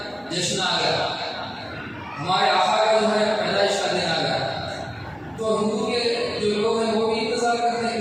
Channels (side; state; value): both; identical; correlation 1.00